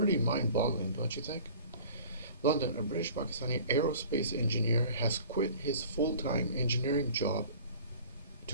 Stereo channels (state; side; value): inverted; both; correlation -0.45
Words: mind-boggling, don't you think? London, a British Pakistani aerospace engineer, has quit his full-time engineering job